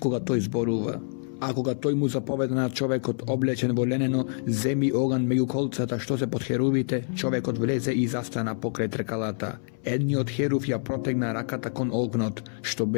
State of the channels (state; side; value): silent; right; 60 dB below the other